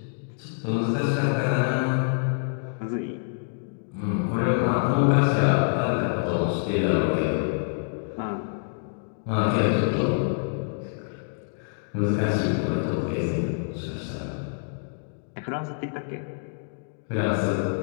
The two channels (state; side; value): silent; right; digital silence